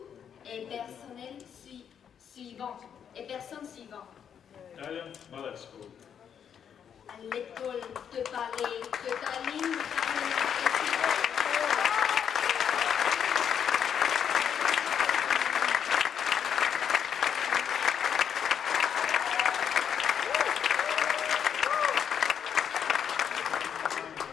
et personnels suivants et personnes suivantes. Italian Ballet School, À l'école de ballet de Tallinn,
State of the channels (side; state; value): right; quieter; 8.1 dB